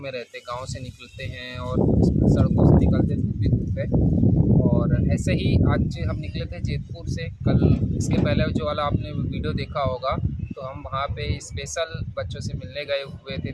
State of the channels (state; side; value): identical; both; correlation 1.00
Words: रहते, गाँव से निकलते हैं और सड़कों से निकलते धूप ही धूप है। और ऐसे ही आज हम निकले थे जैतपुर से। कल इसके पहले जो वाला आपने वीडियो देखा होगा, तो हम वहाँ पे स्पेशल बच्चों से मिलने गए हुए थे,